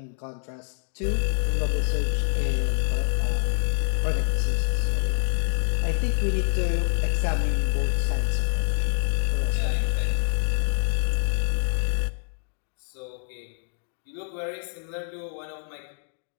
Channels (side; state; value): right; silent; digital silence